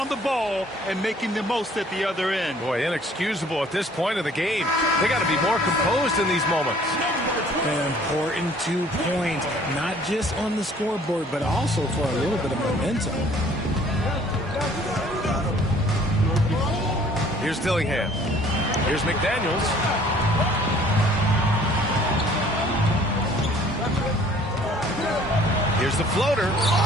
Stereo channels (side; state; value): both; normal; correlation 0.56